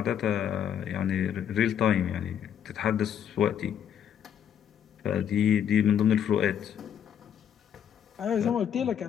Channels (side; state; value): right; quieter; 9.1 dB